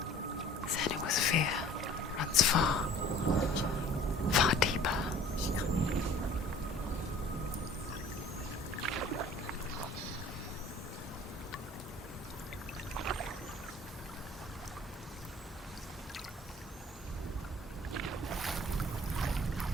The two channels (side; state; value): both; normal; correlation 0.49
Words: Then it was fear runs far, far deeper.